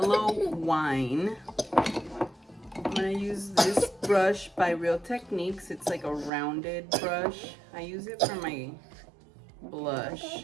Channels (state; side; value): drops out; left; at 6.3 s